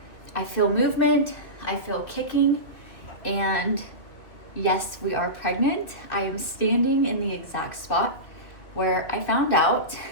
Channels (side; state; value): right; late; 2.6 ms